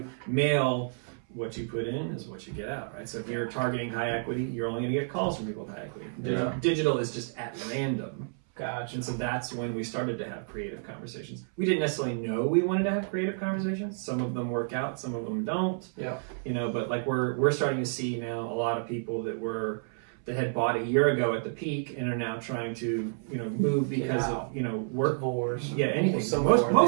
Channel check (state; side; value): silent; left; 58 dB below the other